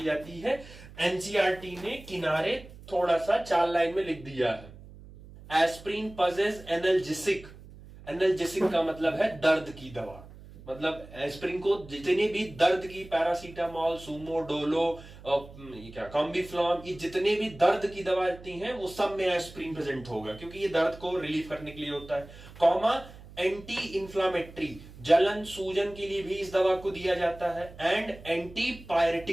जाती है। एनसीईआरटी ने किनारे थोड़ा सा 4 लाइन में लिख दिया है, एस्प्रिन पजेस एनाल्जेसिक, एनाल्जेसिक का मतलब है दर्द की दवा, मतलब एस्प्रिन को जितने भी दर्द की, पैरासीटामोल, सूमो, डोलो, क्या कॉम्बिफ्लॉम, ये जितने भी दर्द की दवा आती हैं वो सब में एस्प्रिन प्रेजेंट होगा, क्योंकि ये दर्द को रिलीफ करने के लिए होता है। कॉमा एंटी इंफ्लामेटरी, जलन सूजन के लिए भी इस दवा को दिया जाता है, and anti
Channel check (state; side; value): noise; right; hum, 18 dB below the sound